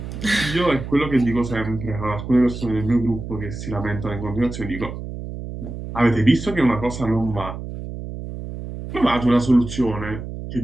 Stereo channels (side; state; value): right; noise; hum, 9 dB below the sound